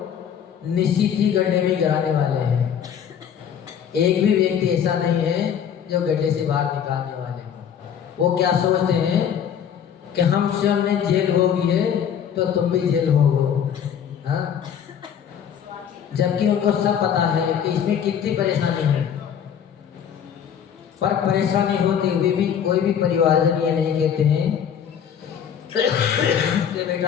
निश्चित ही गड्ढे में गिराने वाले हैं। एक भी व्यक्ति ऐसा नहीं है जो गड्ढे से बाहर निकालने वाले हैं। वो क्या सोचते हैं कि हम स्वयं ने जेल भोगी है तो तुम भी जेल भोगो, हाँ? जबकि उनको सब पता है कि इसमें कितनी परेशानी है। पर परेशानी होते हुए भी कोई भी परिवारजन ये नहीं कहते हैं कि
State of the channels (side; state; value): right; quieter; 8.4 dB